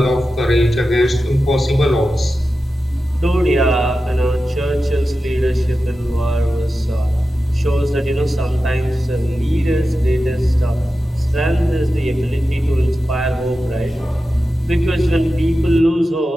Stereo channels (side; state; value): both; normal; correlation 0.93